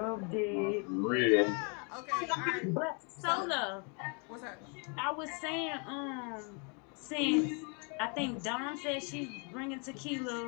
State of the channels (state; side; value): quieter; right; 35.8 dB